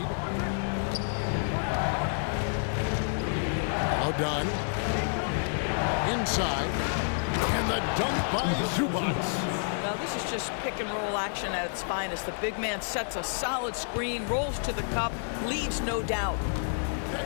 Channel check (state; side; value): silent; right; digital silence